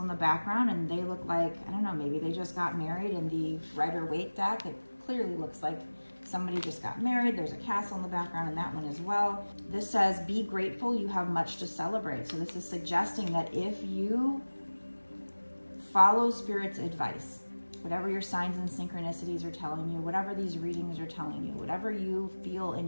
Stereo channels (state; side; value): inverted; both; correlation -1.00